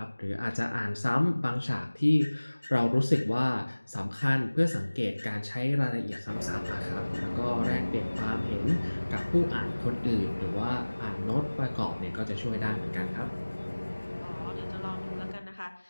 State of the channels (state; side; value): inverted; both; correlation -1.00